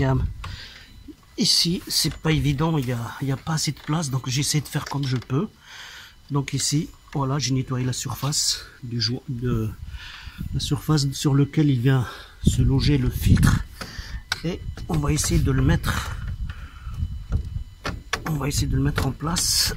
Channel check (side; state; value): both; identical; correlation 1.00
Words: a ici, c'est pas évident, il y a pas assez de place, donc j'essaie de faire comme je peux. Donc ici, voilà, j'ai nettoyé la surface la surface sur laquelle il vient se loger le filtre. Et on va essayer de le mettre. On va essayer de le mettre en place.